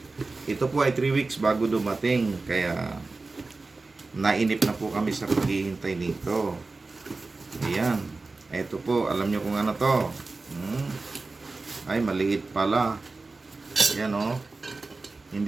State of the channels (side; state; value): left; quieter; 3.6 dB